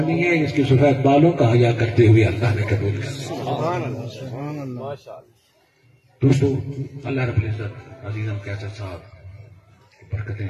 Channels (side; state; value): both; identical; correlation 1.00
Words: ہے، اس کے سفید بالوں کا حیا کرتے ہوئے اللہ نے قبول کرنا۔ دوستو، اللہ رب العزت عزیزم کیسر صاحب برکتیں